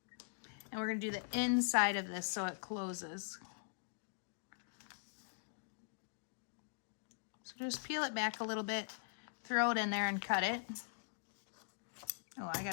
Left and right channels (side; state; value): right; silent; digital silence